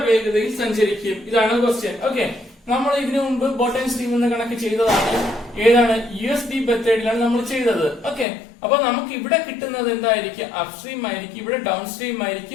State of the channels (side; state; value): right; drops out; at 8.2 s